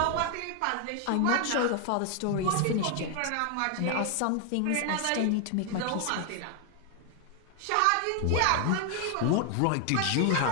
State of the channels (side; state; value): both; different; correlation 0.01